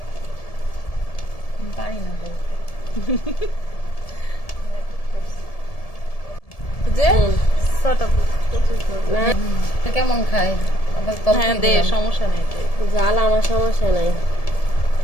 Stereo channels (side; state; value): right; late; 1.7 ms